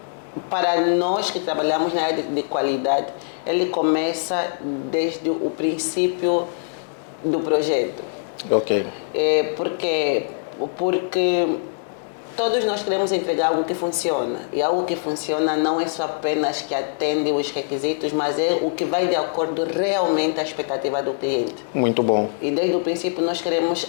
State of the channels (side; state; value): right; silent; digital silence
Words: para nós que trabalhamos na área de qualidade, ele começa desde o princípio do projeto. Ok. Porque todos nós queremos entregar algo que funciona. E algo que funciona não é só apenas que atende os requisitos, mas é o que vai de acordo realmente à expectativa do cliente. Muito bom. E desde o princípio nós queremos